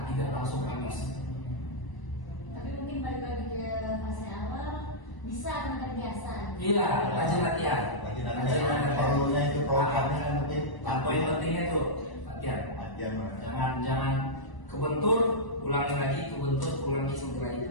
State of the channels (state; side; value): late; right; 1.0 ms